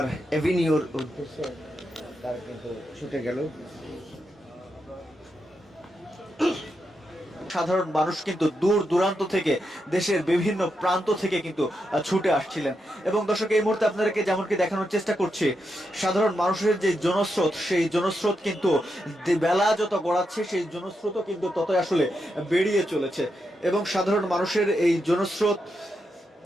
এভিনিউর উদ্দেশ্যে তারা কিন্তু ছুটে গেল। সাধারণ মানুষ কিন্তু দূর দূরান্ত থেকে, দেশের বিভিন্ন প্রান্ত থেকে কিন্তু ছুটে আসছিলেন। এবং দর্শক, এই মুহূর্তে আপনাদেরকে যেমনকি দেখানোর চেষ্টা করছি, সাধারণ মানুষের যে জনস্রোত, সেই জনস্রোত কিন্তু বেলা যত গড়াচ্ছে, সেই জনস্রোতও কিন্তু ততই আসলে বেরিয়ে চলেছে। এবং সাধারণ মানুষের এই জনস্রোত,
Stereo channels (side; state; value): both; normal; correlation 0.84